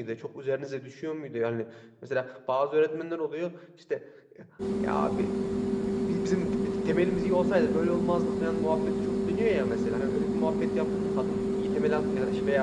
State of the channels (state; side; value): identical; both; correlation 1.00